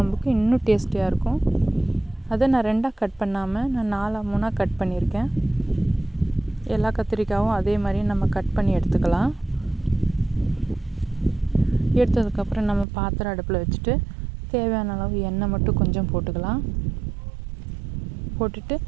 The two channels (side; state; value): left; drops out; at 12.9 s